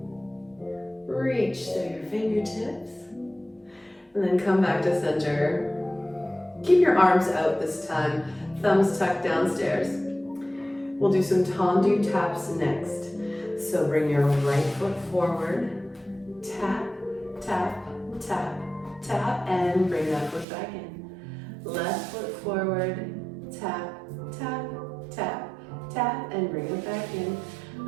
Reach through your fingertips. And then come back to center. Keep your arms out this time. Thumbs tucked downstairs. We'll do some tendu taps next. So bring your right foot forward. Tap, tap, tap, tap, and bring that foot back in. Left foot forward, tap, tap, tap, tap, and bring it back in.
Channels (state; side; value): drops out; left; at 20.5 s